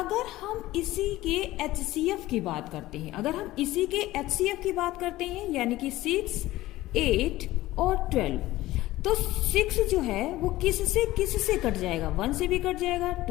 हम इसी के एचसीएफ की बात करते हैं, यानी कि 6, 8 और 12, तो 6 जो है वो किस से कट जाएगा, 1 से भी कट जाएगा,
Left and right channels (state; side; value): quieter; right; 16.7 dB